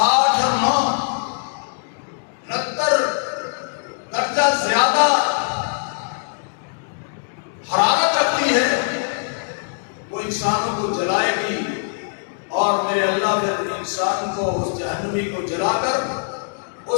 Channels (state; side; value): silent; right; digital silence